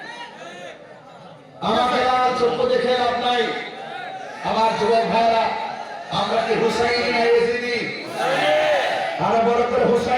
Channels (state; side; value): identical; both; correlation 1.00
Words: আমাকে লাল চক্ষু দেখে লাভ নাই আমার যুবক ভাইরা আমরা কি হুসাইনি না ইয়াজিদি আরো বড় করে